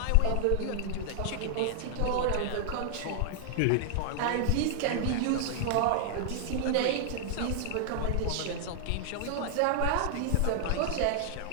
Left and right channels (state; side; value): different; both; correlation -0.01